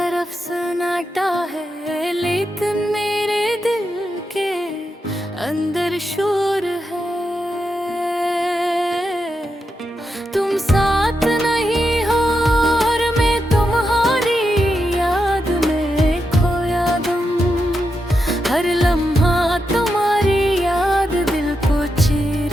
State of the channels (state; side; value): normal; both; correlation 0.86